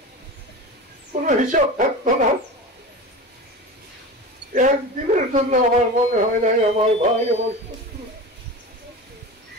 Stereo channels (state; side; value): normal; both; correlation 0.30